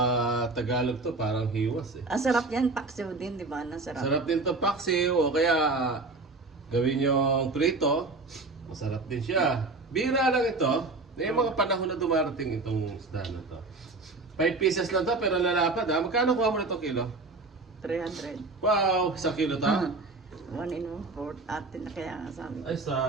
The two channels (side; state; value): left; quieter; 3.5 dB